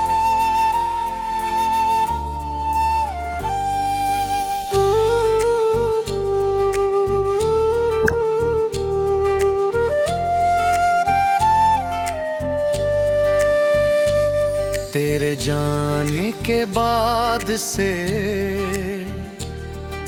तेरे जाने के बाद से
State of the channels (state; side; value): identical; both; correlation 1.00